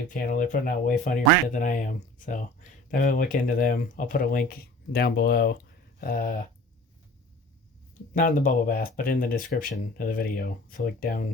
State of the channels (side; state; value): both; normal; correlation 0.44